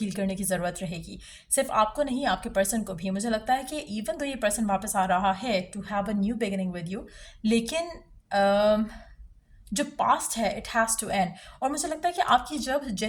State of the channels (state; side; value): identical; both; correlation 1.00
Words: करने की ज़रूरत रहेगी। सिर्फ आपको नहीं, आपके पर्सन को भी। मुझे लगता है कि इवन तो ये पर्सन वापस आ रहा है to have a new beginning with you, लेकिन जो पास्ट है इट हैज़ टू एंड। और मुझे लगता है कि आपकी जब